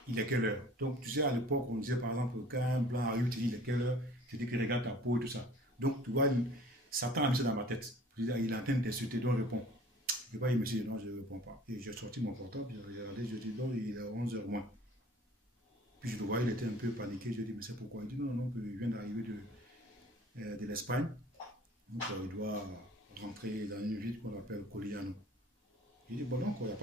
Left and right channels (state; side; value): normal; both; correlation 0.48